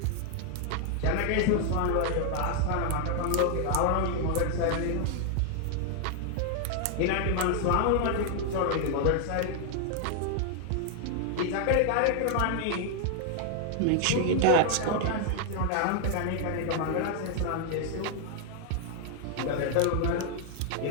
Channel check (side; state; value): both; different; correlation 0.00